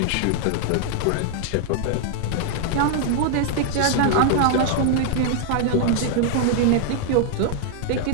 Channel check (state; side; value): different; both; correlation 0.00